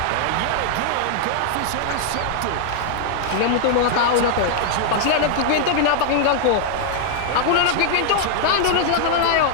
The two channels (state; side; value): different; both; correlation 0.00